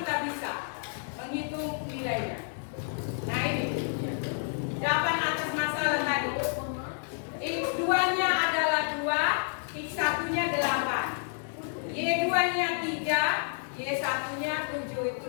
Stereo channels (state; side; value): silent; right; digital silence